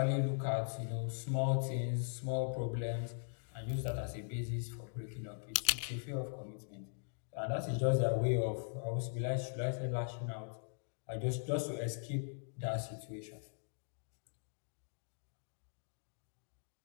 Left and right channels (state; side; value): silent; right; digital silence